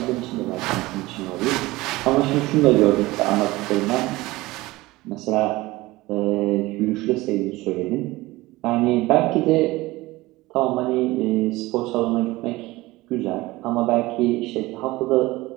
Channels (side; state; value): left; quieter; 19.7 dB